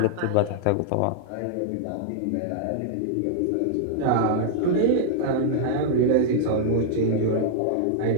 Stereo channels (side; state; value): both; different; correlation -0.01